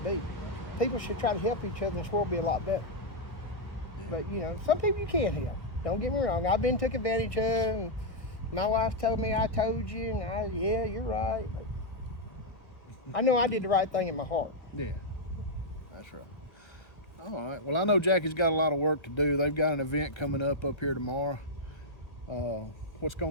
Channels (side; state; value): right; late; 1.2 ms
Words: be. People should try to help each other, and this world will be a lot better. Yeah. But, some people you can't help. Don't get me wrong. I've been took advantage of, and my wife told me I told you, and yeah, you're right. But I know I did the right thing in my heart. Yeah, that's right. All right. Well, I know Jackie's got a lot of work to do. They've got an event coming up here tomorrow. What's